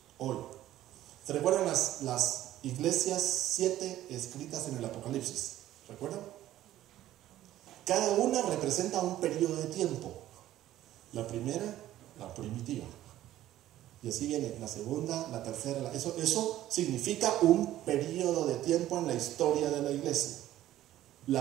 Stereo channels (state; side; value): quieter; left; 13.6 dB